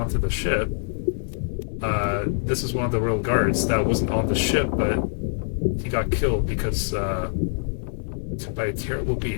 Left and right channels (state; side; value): silent; right; 62 dB below the other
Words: the ship. This is one of the royal guards that wasn't on the ship, but he got killed because by a terrible